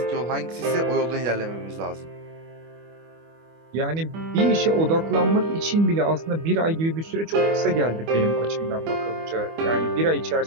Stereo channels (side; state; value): left; late; 25 ms